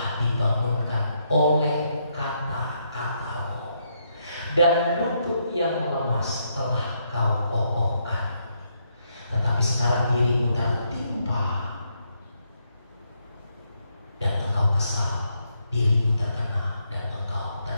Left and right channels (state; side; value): inverted; both; correlation -0.77